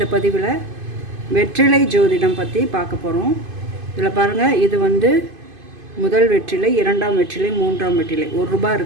பதிவில் வெற்றிலை ஜோதிடம் பற்றி பார்க்க போகிறோம். இதில் பாருங்கள், இது முதல் வெற்றிலை, இரண்டாம் வெற்றிலை, மூன்றாம் வெற்றிலை. ₹1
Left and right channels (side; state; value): left; late; 2.5 ms